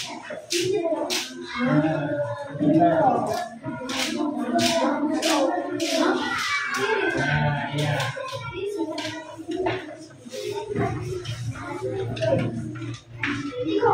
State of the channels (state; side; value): identical; both; correlation 1.00